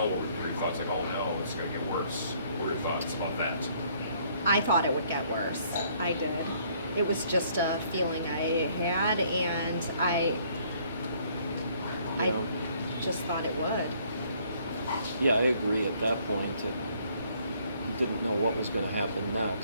What were your thoughts? Like, oh no, it's going to get worse. What were your thoughts about that? I thought it would get worse. I did. It was just a feeling I had, and I Yeah. just thought it would. Yeah, I agree. At that point, you didn't know what was going to happen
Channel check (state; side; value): inverted; both; correlation -0.63